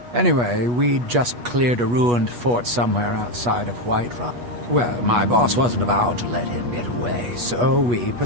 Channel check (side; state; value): left; late; 8.3 ms